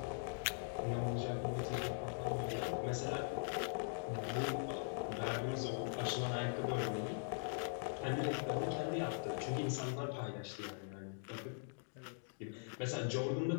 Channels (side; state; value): right; silent; digital silence